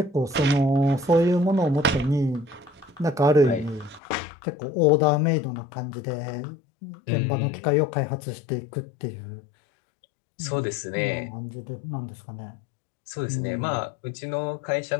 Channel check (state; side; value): drops out; right; at 4.0 s